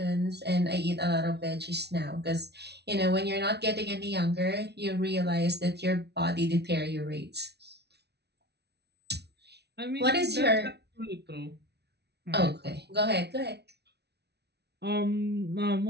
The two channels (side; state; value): left; late; 0.49 ms